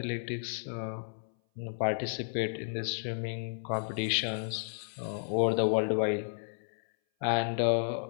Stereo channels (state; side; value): silent; right; 56 dB below the other